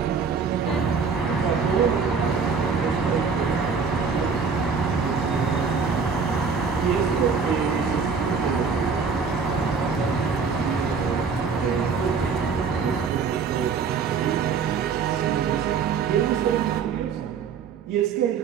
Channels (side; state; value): left; quieter; 5.6 dB